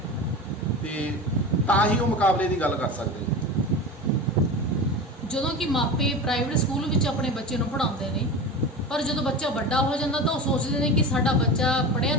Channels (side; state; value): both; normal; correlation 0.29